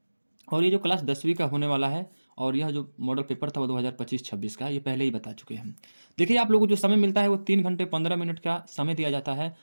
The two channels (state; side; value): inverted; both; correlation -1.00